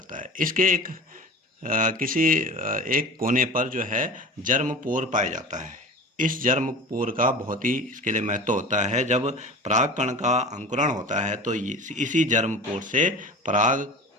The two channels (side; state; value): both; normal; correlation 0.36